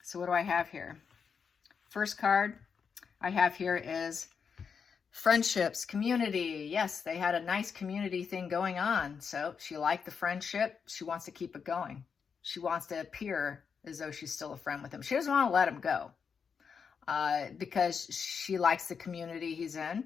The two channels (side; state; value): right; quieter; 6.2 dB